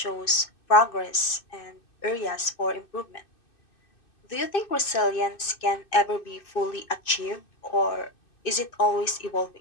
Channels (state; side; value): late; right; 2.6 ms